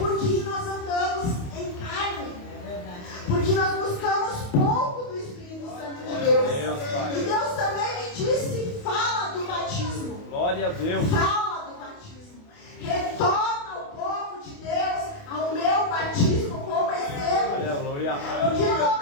nós andamos em carne, porque nós buscamos pouco do Espírito Santo de Deus. E Deus também me disse: fala do batismo. Glória a Deus. Fala do batismo. Retorna o povo de Deus ao meu batismo como exemplo. Aleluia. Porque no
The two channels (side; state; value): right; late; 28 ms